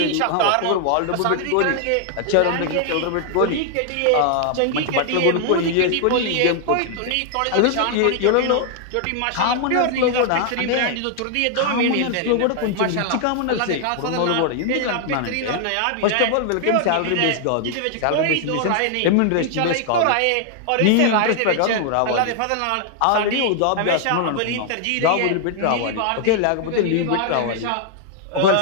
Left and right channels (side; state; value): both; different; correlation 0.00